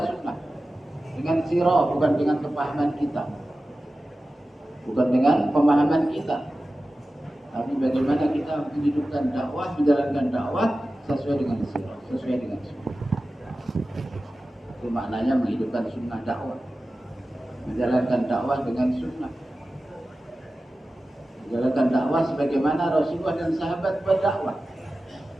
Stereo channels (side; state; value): both; normal; correlation 0.95